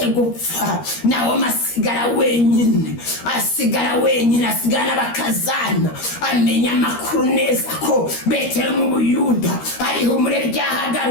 gupfa Nawome asigara wenyine, asigara n'abakazana. Amenya amakuru neza ko Betelehemu mu Buyuda ari ihumure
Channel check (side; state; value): right; late; 13 ms